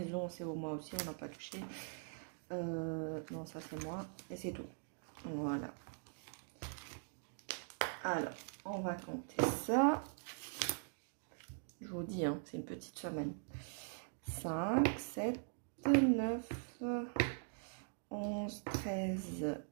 c'est au mois aussi, on n'a pas touché. Non, ça c'est moi, et c'est tout. Voilà. Alors, on va compter ça. Je vous dis, hein, c'est une petite semaine. 5, 7, 9, 11, 13,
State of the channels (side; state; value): left; silent; digital silence